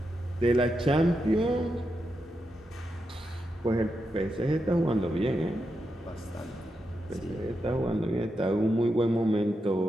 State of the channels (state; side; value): normal; both; correlation 0.86